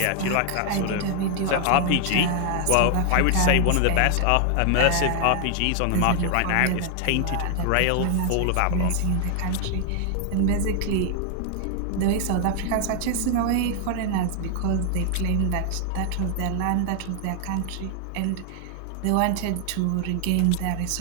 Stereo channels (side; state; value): both; different; correlation 0.00